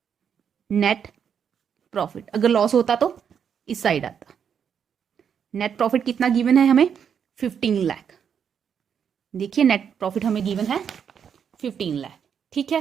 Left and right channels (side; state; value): left; quieter; 7.6 dB